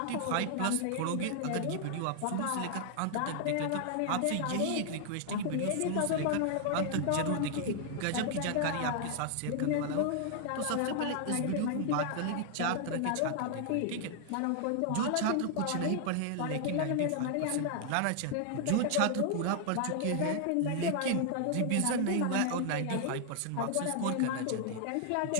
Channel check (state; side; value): different; both; correlation 0.00